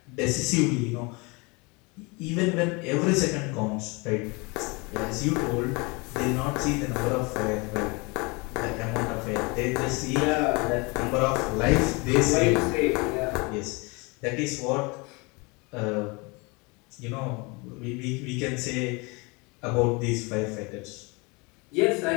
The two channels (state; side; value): quieter; right; 28.0 dB